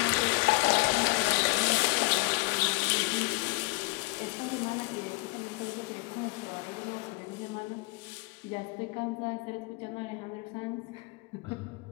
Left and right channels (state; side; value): quieter; right; 27.4 dB